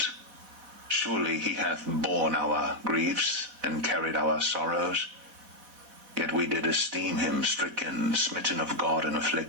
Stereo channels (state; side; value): late; left; 4.1 ms